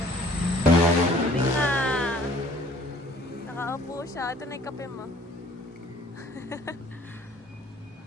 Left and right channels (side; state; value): both; normal; correlation 0.55